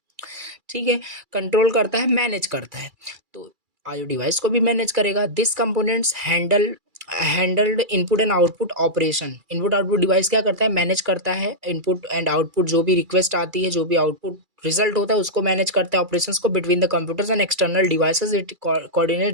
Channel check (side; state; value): left; late; 2.3 ms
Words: ठीक है, कंट्रोल करता है, मैनेज करता है। तो आईओ डिवाइस को भी मैनेज करेगा। This components handled input and output operation. Input output device क्या करता है, मैनेज करता है इनपुट एंड आउटपुट, जो भी रिक्वेस्ट आती है, जो भी आउटपुट रिजल्ट होता है उसको मैनेज करता है, ऑपरेशंस को between the computers and external devices. It coordinate